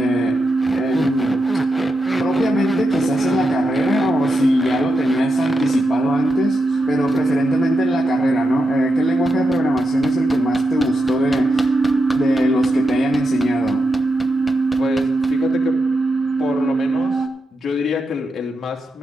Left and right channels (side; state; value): both; normal; correlation 0.86